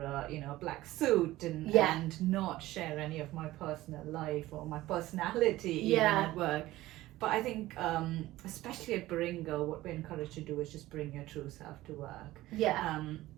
a black suit and not share any of my personal life or my personality even at work. But I think, especially at Baringa, what we're encouraged to do is just bring your true self to work. Yeah.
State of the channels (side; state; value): left; quieter; 16.7 dB